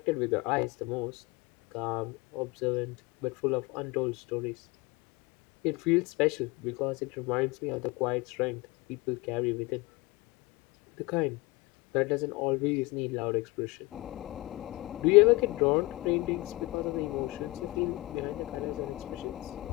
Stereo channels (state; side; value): quieter; right; 22.2 dB